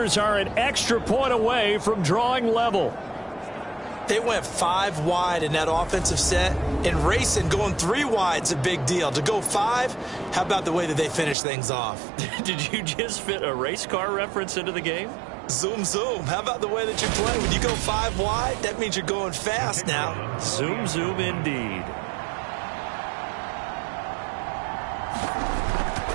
are an extra point away from drawing level. They went 5 wide in that offensive set, and racing going 3 wide is a big deal. To go 5, how about the way that they finish things off? Did you just fit a race car reference into the game? Zoom, zoom. How about the way that you play? When you go 5 wide, that means you're going fast now. Zoom, zoom indeed.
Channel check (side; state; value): left; drops out; at 11.4 s